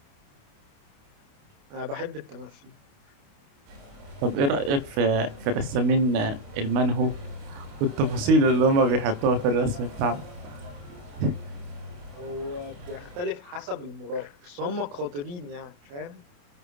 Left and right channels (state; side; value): late; left; 28 ms